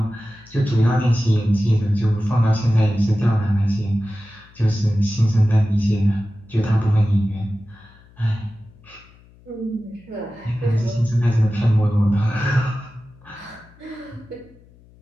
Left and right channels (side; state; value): left; noise; hum, 27 dB below the sound